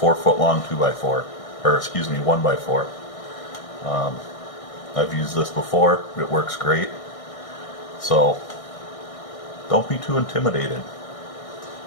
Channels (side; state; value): right; late; 1.6 ms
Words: long 2x4, or excuse me, 1x4. I've used this before, it works great. So don't be too intimidated.